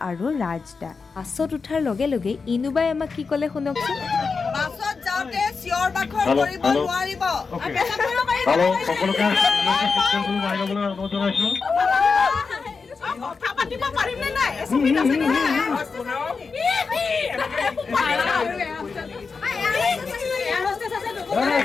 আৰু ৰাজদা। বাছত উঠাৰ লগে লগেই ইনুবাই আমাক কি ক'লে শুনকচোন। বাছত যাওঁতে চিঞৰ বাখৰ কৰিব নোৱাৰিব। কথা পাতিব পাৰিম নে নাই?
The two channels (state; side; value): quieter; right; 4.8 dB